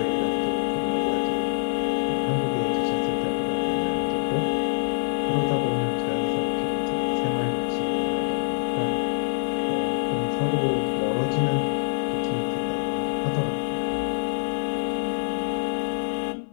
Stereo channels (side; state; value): right; silent; 56 dB below the other